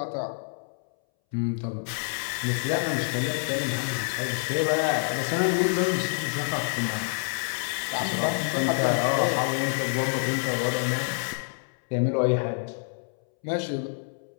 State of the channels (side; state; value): right; silent; 60 dB below the other